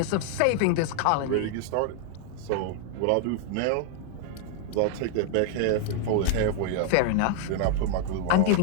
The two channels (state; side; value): different; both; correlation 0.00